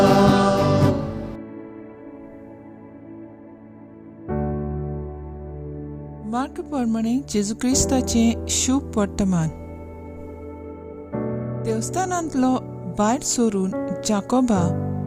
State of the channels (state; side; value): identical; both; correlation 1.00